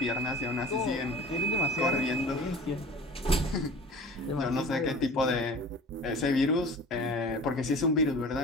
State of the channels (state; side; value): normal; both; correlation 0.41